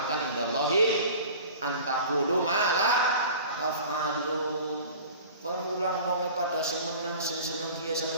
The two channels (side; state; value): both; inverted; correlation -0.41